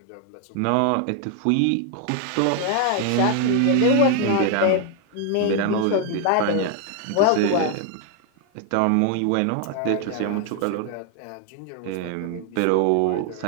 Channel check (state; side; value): different; both; correlation 0.00